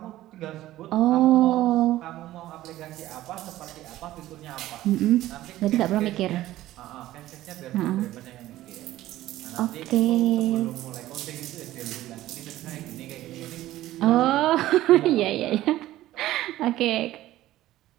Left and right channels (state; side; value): quieter; left; 15.0 dB